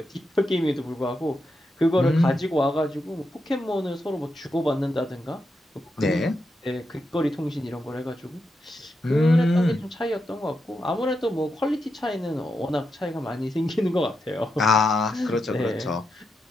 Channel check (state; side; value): normal; both; correlation 0.85